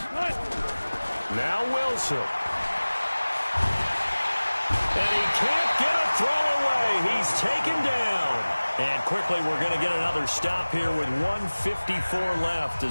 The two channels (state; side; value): inverted; both; correlation -1.00